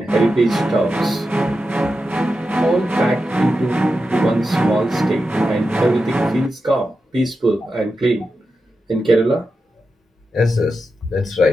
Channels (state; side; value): normal; both; correlation 0.89